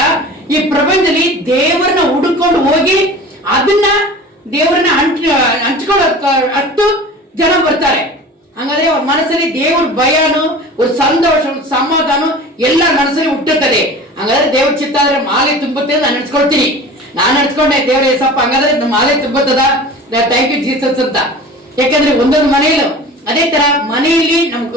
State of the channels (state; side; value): normal; both; correlation 0.38